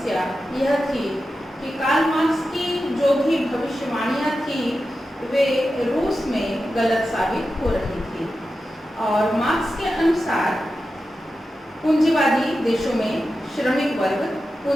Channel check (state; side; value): normal; both; correlation 0.91